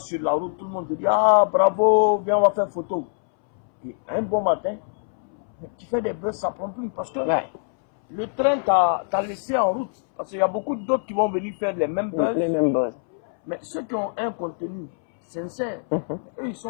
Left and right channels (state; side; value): silent; right; 63 dB below the other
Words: la route, tout le monde te dit « Ah, bravo, viens, on va faire photo. » Et un bon matin, mais tu fais des buzz, ça ne prend plus parce que le train t'a laissé en route. Parce qu'il y a beaucoup d'autres qui vont venir faire les mêmes buzz. Mais ceux qui ont un contenu sincère, mais eux, ils